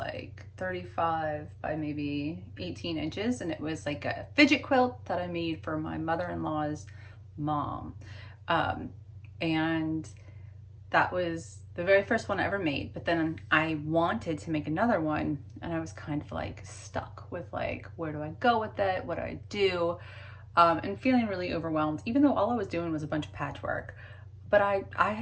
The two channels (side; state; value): both; identical; correlation 1.00